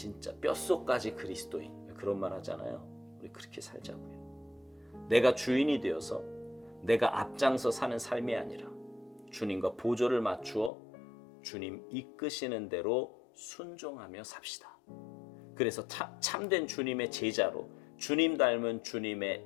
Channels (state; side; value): drops out; right; at 10.7 s